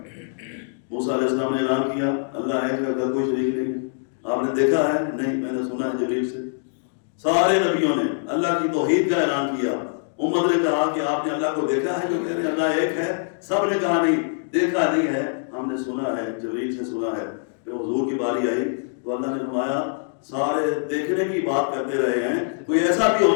موسیٰ علیہ السلام نے اعلان کیا اللہ ایک ہے، اس کا کوئی شریک نہیں. آپ نے دیکھا ہے؟ نہیں میں نے سنا ہے جبریل سے. سارے نبیوں نے اللہ کی توحید کا اعلان کیا. امت نے کہا کہ آپ نے اللہ کو دیکھا ہے؟ جو کہہ رہے ہیں اللہ ایک ہے. سب نے کہا نہیں دیکھا نہیں ہے، ہم نے سنا ہے، جبریل سے سنا ہے. پھر حضور کی باری آئی تو اللہ نے فرمایا سارے دیکھنے کی بات کرتے رہے ہیں، کوئی ایسا بھی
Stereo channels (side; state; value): right; silent; digital silence